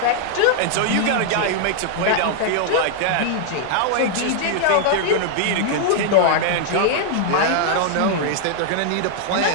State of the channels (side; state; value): both; different; correlation 0.00